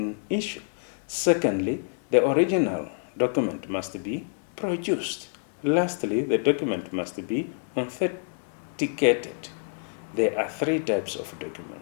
issue. Secondly, the original document must be produced. Lastly, the document must be authenticated. There are three types of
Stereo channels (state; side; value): silent; right; 60 dB below the other